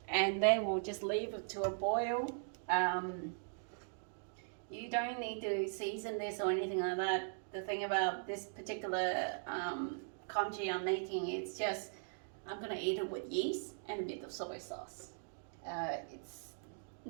And then we'll just leave it to a boil. You don't need to season this or anything like that. The thing about this particular congee I'm making, it's just I'm gonna eat it with yeast and a bit of soy sauce. It's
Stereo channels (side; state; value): left; silent; digital silence